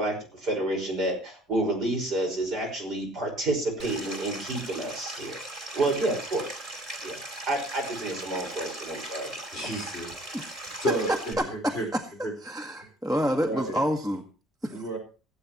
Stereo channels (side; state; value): both; normal; correlation 0.56